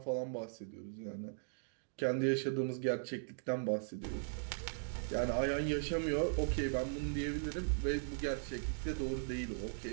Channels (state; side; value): silent; left; digital silence